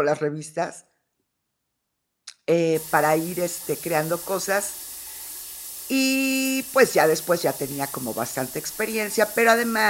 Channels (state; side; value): identical; both; correlation 1.00